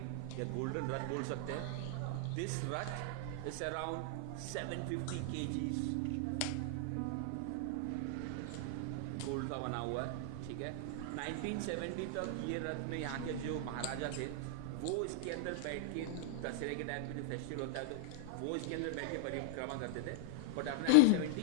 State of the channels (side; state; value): both; different; correlation -0.01